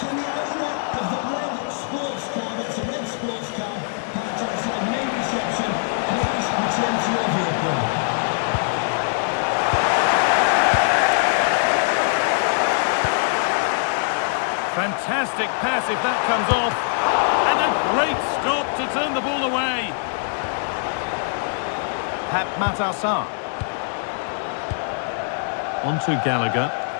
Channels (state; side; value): silent; right; digital silence